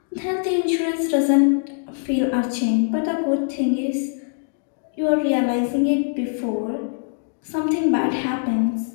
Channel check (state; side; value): silent; right; digital silence